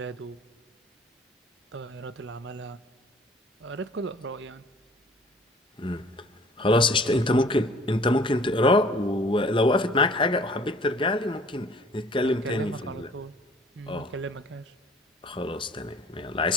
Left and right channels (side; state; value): both; normal; correlation 0.52